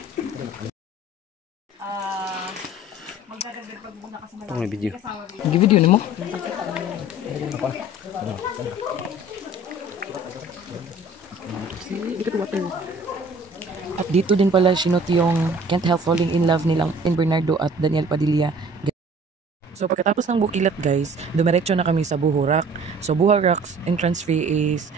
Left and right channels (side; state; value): both; normal; correlation 0.49